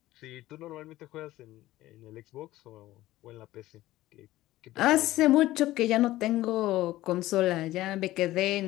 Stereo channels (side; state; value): right; quieter; 16.1 dB